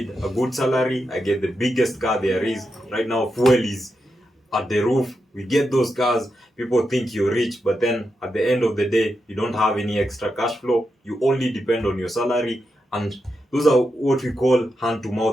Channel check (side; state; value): both; normal; correlation 0.86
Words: a good salary, I get the biggest car there is. Right now, fuel is at the roof. We get those cars, people think you're rich, but then at the end of the day, you don't have any extra cash flow. You only depend on your salary, and those are what we call